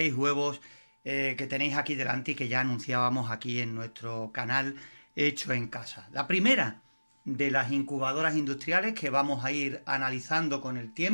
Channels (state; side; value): inverted; both; correlation -1.00